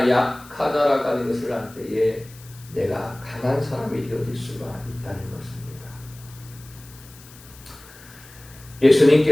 약하다라고 하는 것을 알 때에 내가 강한 사람이 되어질 수가 있다는 것입니다.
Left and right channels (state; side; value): noise; left; hiss, 22 dB below the sound